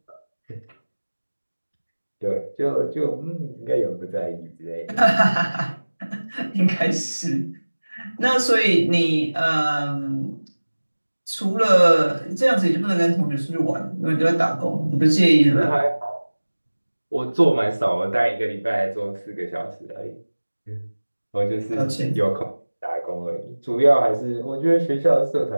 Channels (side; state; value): both; inverted; correlation -1.00